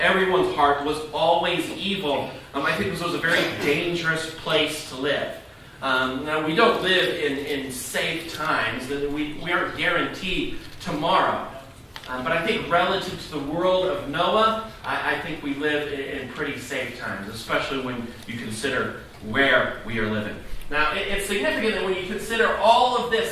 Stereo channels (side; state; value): both; identical; correlation 1.00